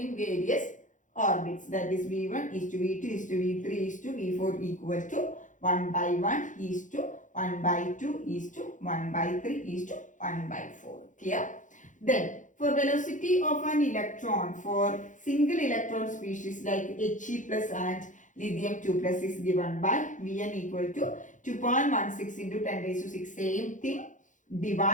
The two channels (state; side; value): late; right; 0.37 ms